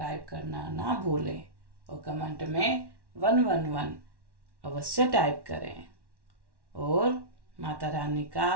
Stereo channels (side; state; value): left; late; 1.1 ms